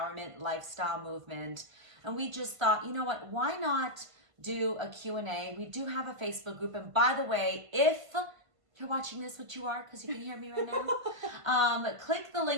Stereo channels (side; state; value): left; late; 1.5 ms